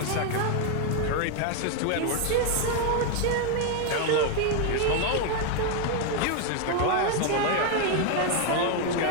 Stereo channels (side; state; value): both; different; correlation 0.01